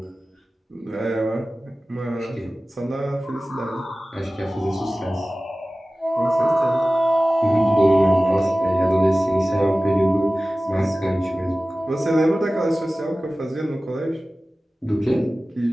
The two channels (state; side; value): normal; both; correlation 0.97